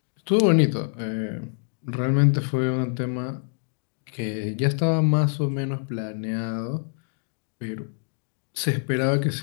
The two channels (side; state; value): right; silent; 61 dB below the other